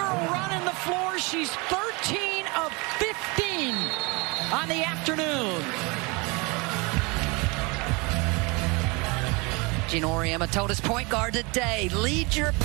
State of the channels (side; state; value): left; quieter; 27.6 dB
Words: running the floor. She's 13 of 15 on the afternoon. Gina Auriemma told his point guard today, lead your